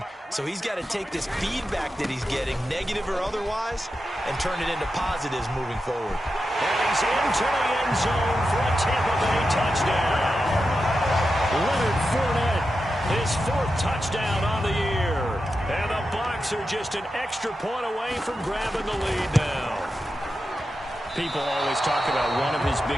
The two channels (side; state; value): both; normal; correlation 0.89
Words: so he's got to take this feedback that he's getting, negative or otherwise, and turn it into positives moving forward. And he's into the end zone for a Tampa Bay touchdown. Leonard Fournette. His 4th touchdown on the year. And the Bucs are just an extra point away from grabbing the lead now. People always talk about one of his